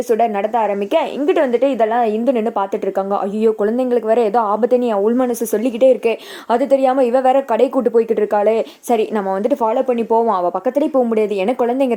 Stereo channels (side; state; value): both; identical; correlation 1.00